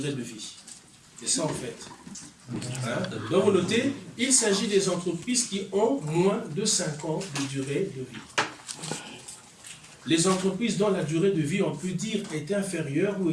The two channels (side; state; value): both; identical; correlation 1.00